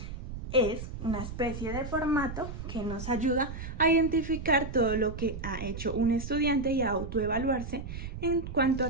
es una especie de formato que nos ayuda a identificar todo lo que ha hecho un estudiante y a autoevaluarse en cuanto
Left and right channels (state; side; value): noise; right; rumble, 8 dB below the sound